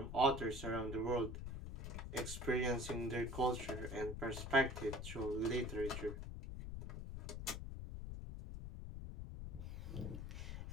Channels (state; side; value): noise; left; rumble, 6 dB below the sound